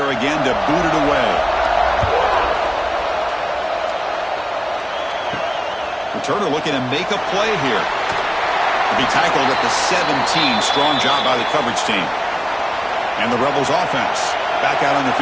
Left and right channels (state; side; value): identical; both; correlation 1.00